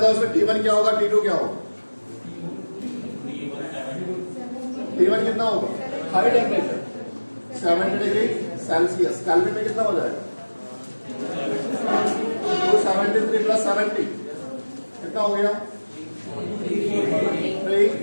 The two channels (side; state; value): both; inverted; correlation -1.00